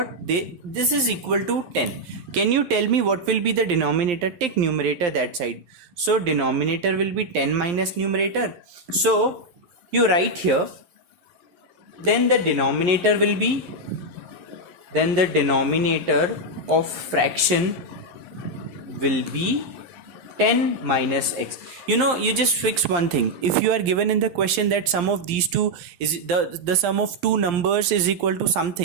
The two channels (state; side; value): late; left; 11 ms